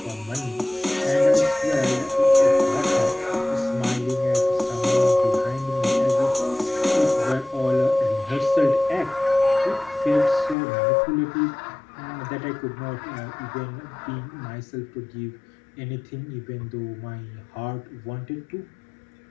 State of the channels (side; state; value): right; drops out; at 10.6 s